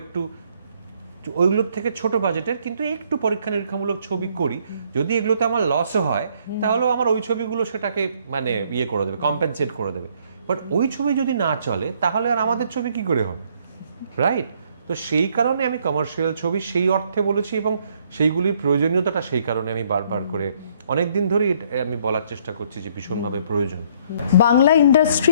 একটু ওইগুলোর থেকে ছোট বাজেটের কিন্তু একটু পরীক্ষা নিরীক্ষামূলক ছবি করি, যদি এগুলোতে আমার লসও হয় তাহলেও আমার ওই ছবিগুলো সেটাকে মানে করে দেবে, কম্পেনসেট করে দেবে। বাট ওই ছবি যদি না চলে তাহলে আর আমাদের ছবি কি করে হবে, রাইট? তো সেই কারণে আমি কমার্শিয়াল ছবি সেই অর্থে বলেছি, এবং সেইগুলির প্রয়োজনীয়তাটা সেই কারণে আমি বারবার করে অনেকদিন ধরে আমি বলার চেষ্টা করছি যে ভীষণভাবে প্রয়োজন। বাংলা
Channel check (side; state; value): both; inverted; correlation -0.66